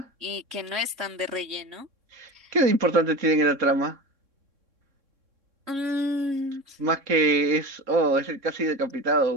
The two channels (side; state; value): left; late; 3.6 ms